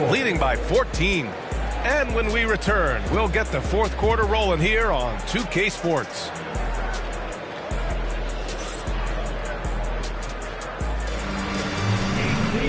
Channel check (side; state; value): both; identical; correlation 1.00